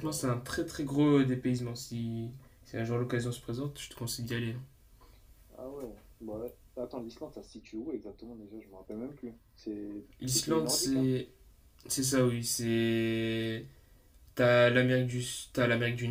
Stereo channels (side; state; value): both; identical; correlation 1.00